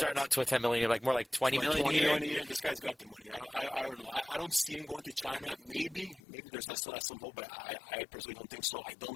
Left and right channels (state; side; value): drops out; right; at 6.2 s